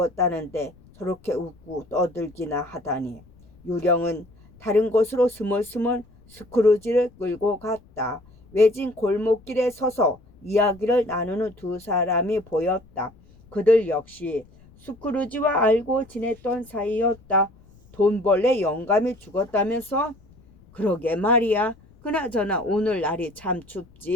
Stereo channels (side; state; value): left; noise; rumble, 27 dB below the sound